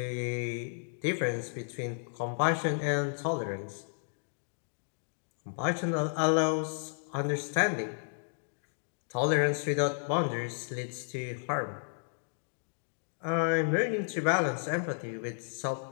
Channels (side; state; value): right; silent; digital silence